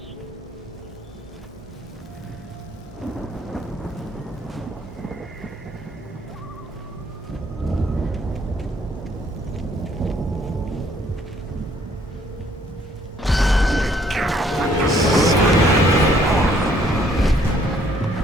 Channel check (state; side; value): normal; both; correlation 0.64